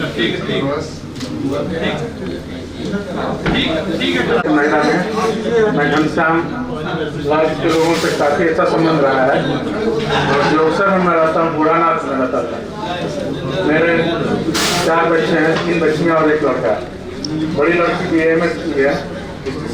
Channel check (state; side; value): identical; both; correlation 1.00